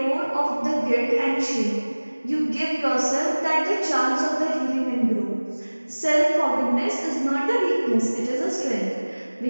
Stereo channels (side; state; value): both; inverted; correlation -1.00